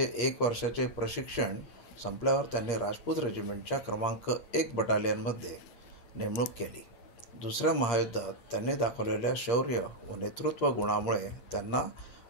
1 वर्षाचे प्रशिक्षण संपल्यावर त्यांनी राजपूत रेजिमेंटच्या क्रमांक 1 बटालियनमध्ये नेमणूक केली। दुसऱ्या महायुद्धात त्यांनी दाखवलेल्या शौर्य व नेतृत्व गुणामुळे त्यांना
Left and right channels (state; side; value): late; right; 8.5 ms